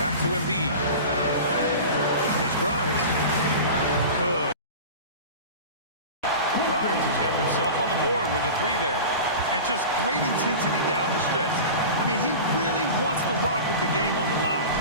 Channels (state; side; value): inverted; both; correlation -0.33